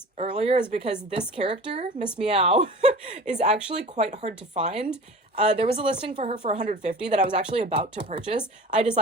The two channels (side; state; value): both; normal; correlation 0.38